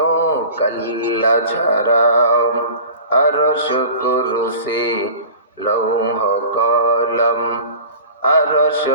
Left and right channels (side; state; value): both; inverted; correlation -0.40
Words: আল্লাহ ছাড়া। আরশ কুরসি লৌহ কলম, আরশ